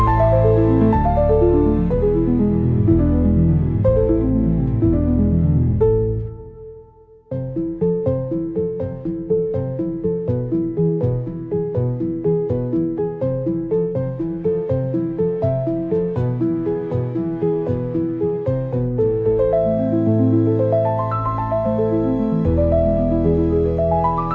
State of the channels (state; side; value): identical; both; correlation 1.00